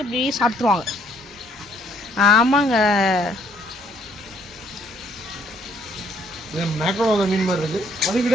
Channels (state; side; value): normal; both; correlation 0.66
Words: அப்படியே சாப்பிட்ருவாங்க. ஆமாங்க, மீன் மாதிரி இருக்கு. அது